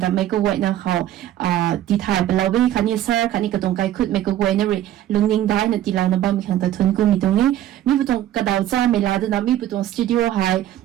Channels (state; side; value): quieter; left; 12.5 dB